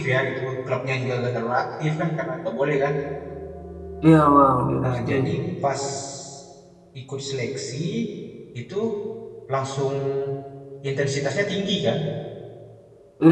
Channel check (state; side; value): identical; both; correlation 1.00